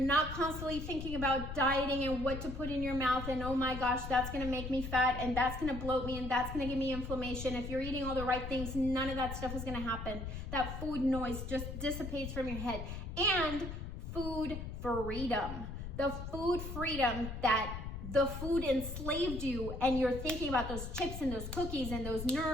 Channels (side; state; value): left; noise; rumble, 7 dB below the sound